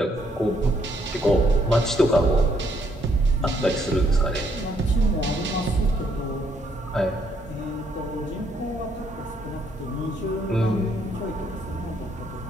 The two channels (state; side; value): normal; both; correlation 0.70